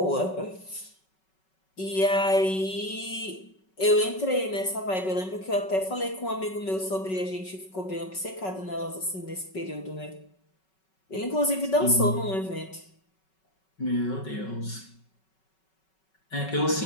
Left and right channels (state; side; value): late; right; 5.3 ms